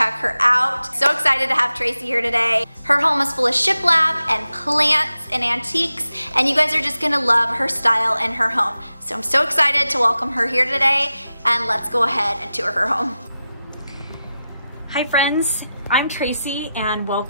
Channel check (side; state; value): both; inverted; correlation -0.91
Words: her out. So excited to have Tracey here today. Her home is full of shiplap and plants and antiques, and you guys are just gonna love her style and her home. So I'm so excited to welcome her here today, and let's go ahead and tour her home. Hi friends, I'm Tracey and